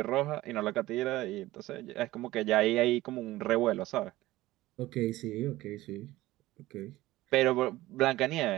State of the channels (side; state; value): left; quieter; 17.1 dB